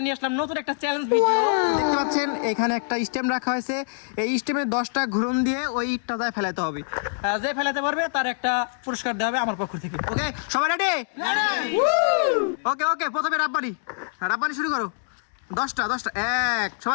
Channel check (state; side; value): silent; right; digital silence